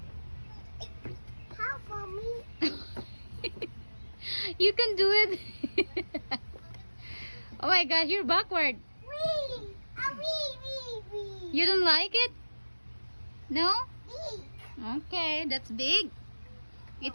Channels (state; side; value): inverted; both; correlation -1.00